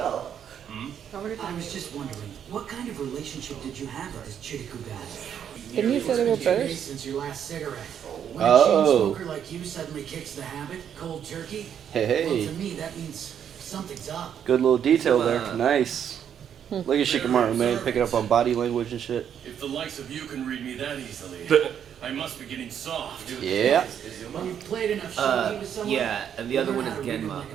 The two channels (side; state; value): left; quieter; 8.8 dB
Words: I was just wondering, what kind of relationship did you have with this Chiriku guy? Didn't you say they were brothers? Since your last cigarette. When a Oh. chain smoker like you suddenly kicks the habit, cold turkey. Hey, Well, hey. to me, that means something's up. Good little detail there. Nice. Look at Shikamaru, man, picking up on body language and shit. If the likes of you can read me that easily, I must be getting soft. Yeah. When you've played enough shogi with someone, Yeah, and the other you one learn is how to read 'em Genma. like